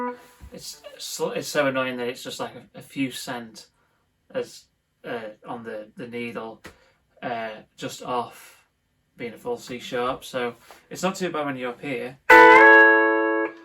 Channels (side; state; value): both; identical; correlation 1.00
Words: It's so annoying that it's just like a few cent as on the needle, just off being a full C sharp. So it's not too bad when you're up here.